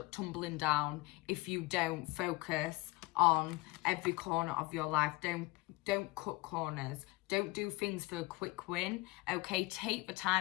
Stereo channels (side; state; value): right; quieter; 21.9 dB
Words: tumbling down if you don't focus on every corner of your life. Don't cut corners. Don't do things for a quick win, okay? Take the